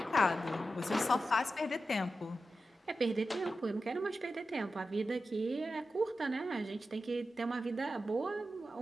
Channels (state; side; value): normal; both; correlation 0.91